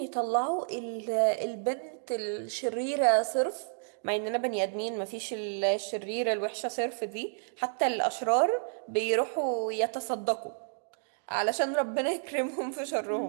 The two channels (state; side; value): silent; left; digital silence